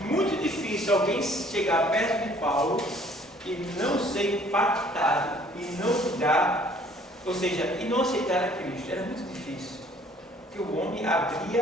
muito difícil alguém chegar perto de Paulo e não ser impactado e não mudar, ou seja, e não aceitar a Cristo. Era muito difícil, porque o homem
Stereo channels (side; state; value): both; normal; correlation 0.57